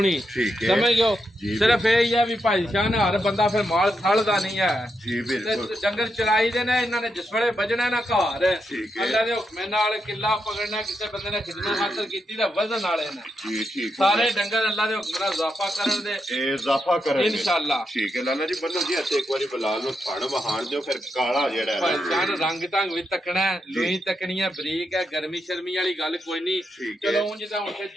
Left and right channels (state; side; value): normal; both; correlation 0.83